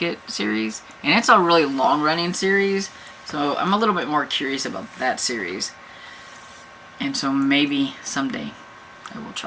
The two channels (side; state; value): both; identical; correlation 1.00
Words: series. And it's a really long running series. So I'm a little bit more curious about that series. And so maybe someday I will